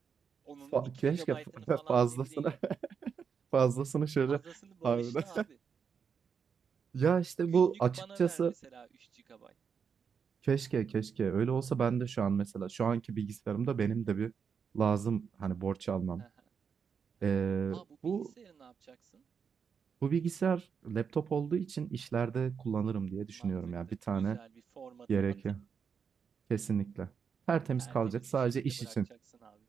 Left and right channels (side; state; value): left; quieter; 6.5 dB